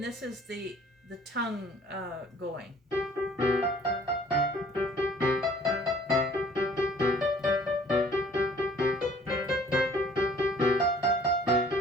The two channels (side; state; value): both; normal; correlation 0.55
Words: this is the tongue going.